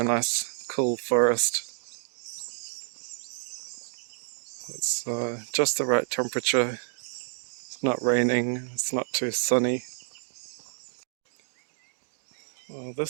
nice cool forest. It's just the right temperature. It's not raining, it's not too sunny. Well,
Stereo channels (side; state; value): left; silent; digital silence